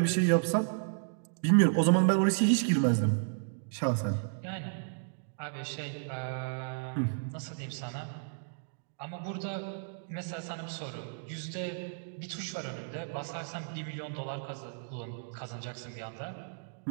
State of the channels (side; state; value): left; silent; digital silence